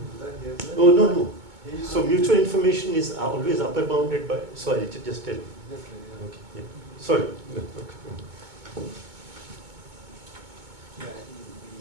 do that here as well? Oh, no, no. Here you So can't do mutual that. information is always upper bounded by, sorry, just tell me. That's right, yeah, okay. Sorry. Yeah, I think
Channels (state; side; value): late; left; 2.2 ms